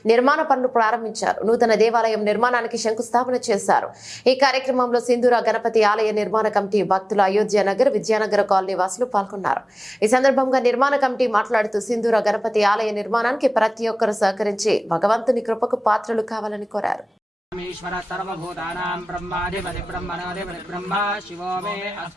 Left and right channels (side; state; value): both; normal; correlation 0.98